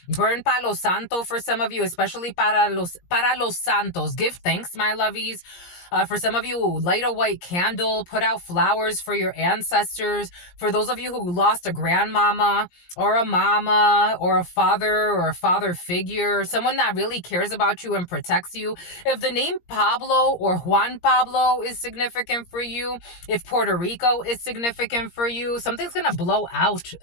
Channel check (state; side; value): late; right; 17 ms